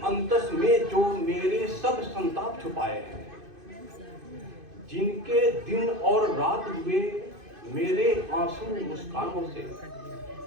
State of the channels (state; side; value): late; left; 2.5 ms